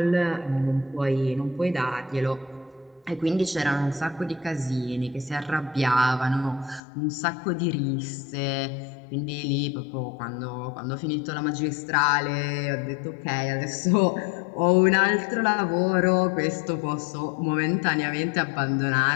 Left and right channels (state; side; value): drops out; right; at 6.8 s